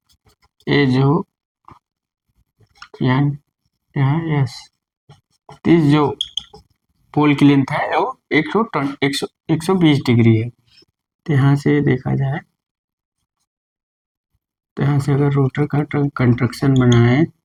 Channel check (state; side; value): identical; both; correlation 1.00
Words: ये जो यहाँ यस, इस जो पोल की लेंथ है वो 120 डिग्री है। तो यहाँ से देखा जाए, तो यहाँ से अगर रोटर का कंस्ट्रक्शन बनाए,